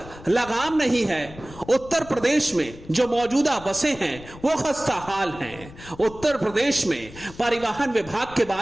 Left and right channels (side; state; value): left; noise; rumble, 18 dB below the sound